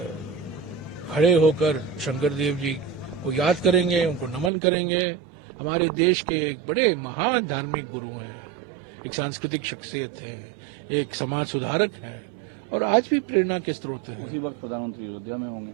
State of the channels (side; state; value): left; drops out; at 4.5 s